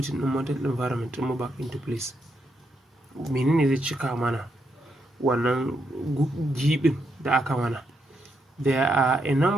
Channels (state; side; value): normal; both; correlation 0.80